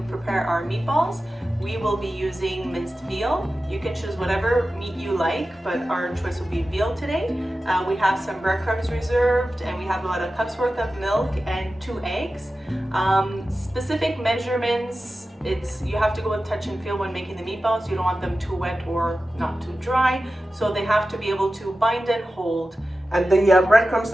prepare our meatballs. We will be using minced veal. You can choose whatever meat you like, but our choice will be veal today. We have some breadcrumbs reserved, and we have about a cup's worth of milk and 2 eggs. Specific measurements, you have to go with touch and feel when making the meatballs. You don't want them too wet or not too dry, so they have to be able to bind and hold. And the breadcrumbs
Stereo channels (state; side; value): normal; both; correlation 0.94